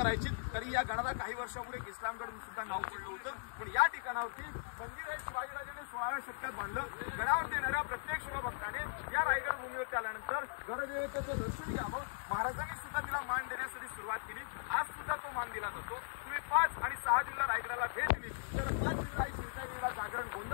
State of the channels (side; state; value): right; silent; digital silence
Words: तरी या गडाला काही वर्षापूर्वी इस्लामगड सुद्धा नाव पडलं होतं. पण या ठिकाणावरती मंदिर हे शिवाजीराजांनी 16व्या शतकात बांधलं. गडावरती येणाऱ्या प्रत्येक शिवभक्ताने या रायगड भूमीवरती आल्यानंतर गडदेवतेचं दर्शन घ्यावं. महाराजांनी सुद्धा तिला मान देण्यासाठी सुरुवात केली. आज सुद्धा तो मान दिला जातो. तुम्ही 5 आणि 6 जूनला रायगडाला भेट दिली तर 5 जुलै शिरकाईला जागरण